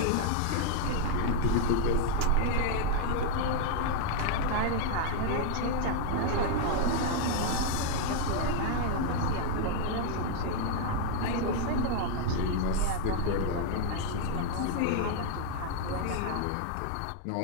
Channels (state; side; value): different; both; correlation 0.00